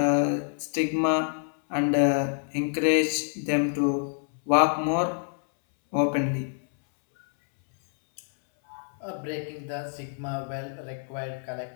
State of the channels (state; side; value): silent; right; 60 dB below the other